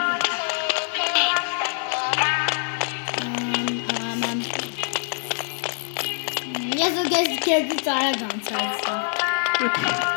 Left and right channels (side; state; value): right; silent; 56 dB below the other